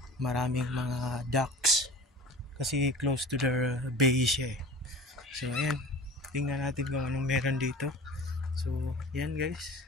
maraming mga ducks kasi close to the bay siya eh. So ayan, tingnan natin kung anong meron dito. So yan guys,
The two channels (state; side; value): normal; both; correlation 0.39